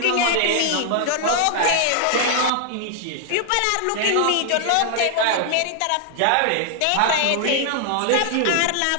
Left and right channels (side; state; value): both; different; correlation 0.00